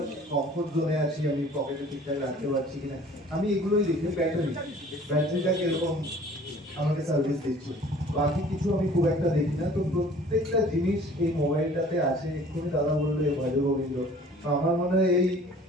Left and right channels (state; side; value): normal; both; correlation 0.51